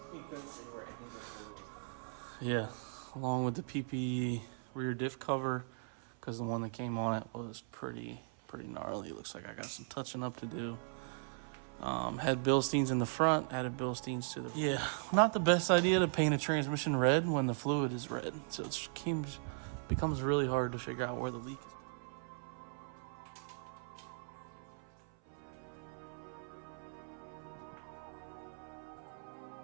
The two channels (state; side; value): silent; left; 52 dB below the other